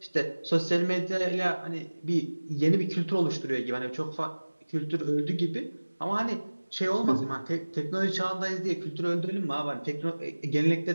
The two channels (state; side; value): inverted; both; correlation -1.00